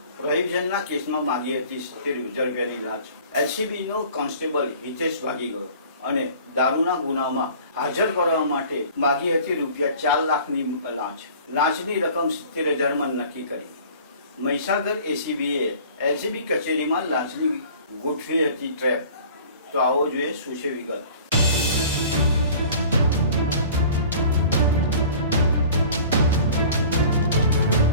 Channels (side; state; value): both; inverted; correlation -0.46